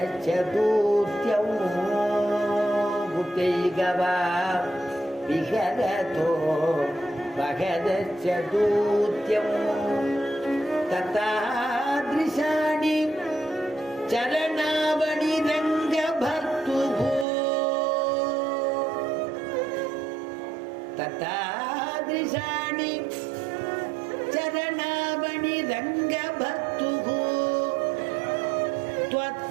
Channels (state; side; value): drops out; left; at 17.2 s